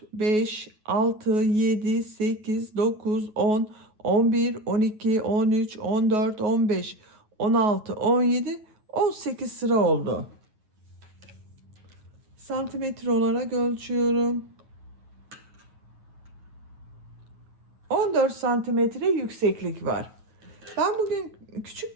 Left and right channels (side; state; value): left; late; 9.4 ms